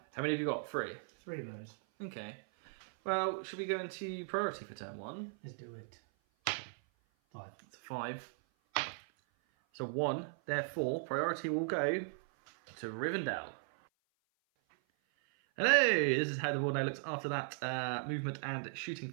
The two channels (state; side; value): silent; left; 53 dB below the other